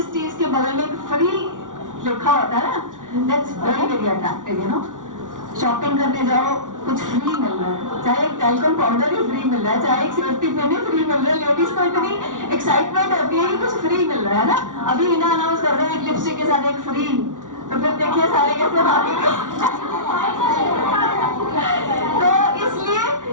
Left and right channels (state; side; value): late; left; 0.87 ms